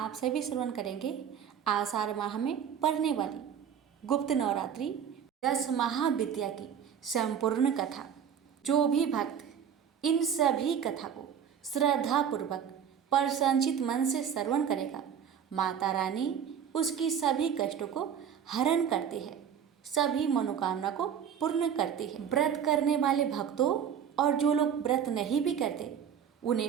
सभी श्रवण करेंगे आषाढ़ माह में पढ़ने वाली गुप्त नवरात्रि 10 महाविद्या की संपूर्ण कथा। जो भी भक्त इन सभी कथा को श्रद्धापूर्वक प्रसन्नचित मन से श्रवण करेगा, माता रानी उसकी सभी कष्टों को हरण करती है, सभी मनोकामना को पूर्ण करती है। व्रत करने वाले भक्तों और जो लोग व्रत नहीं भी करते,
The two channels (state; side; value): quieter; left; 8.1 dB